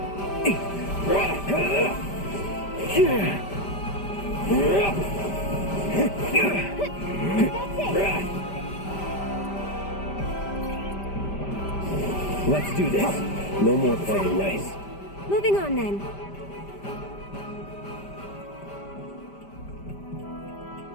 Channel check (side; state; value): right; late; 5.1 ms